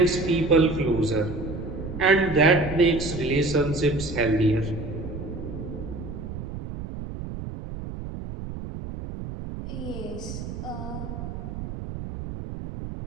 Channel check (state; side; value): noise; right; rumble, 8 dB below the sound